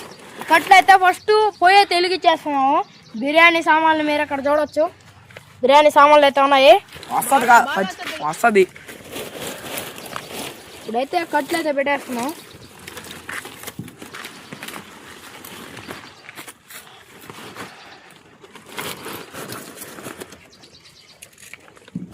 కట్లయితే ఫస్ట్ పోయే తెలిగిచ్చేస్తున్నాము. బిర్యానీ సామాన్లు మీరు ఇక్కడ చూడవచ్చు. బిర్యానీ సామాన్లు అయితే ఉన్నాయి. వస్తుంది. ఇప్పుడైతే కట్లు అయితే పెట్టేస్తున్నాం.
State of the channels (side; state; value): both; identical; correlation 1.00